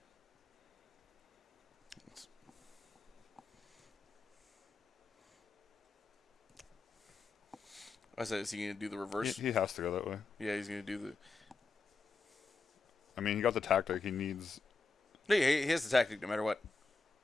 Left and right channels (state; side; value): quieter; right; 4.0 dB